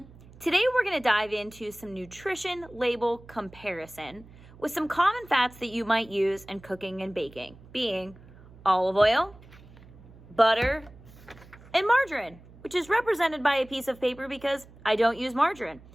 Today we're going to dive into some nutrition label comparison with some common fats that you might use in cooking and baking, being olive oil, butter, and margarine, which is represented by a piece of paper because I don't use margarine.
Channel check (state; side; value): noise; right; hum, 22 dB below the sound